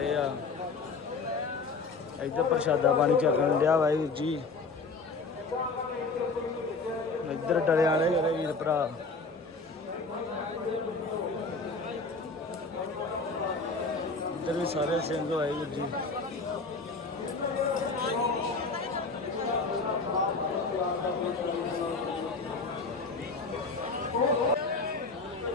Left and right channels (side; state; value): right; quieter; 4.0 dB